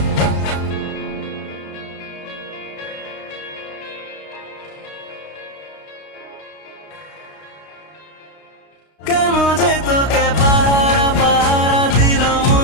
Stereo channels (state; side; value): late; right; 32 ms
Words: কেন যে তোকে পাহারা পাহারা দিল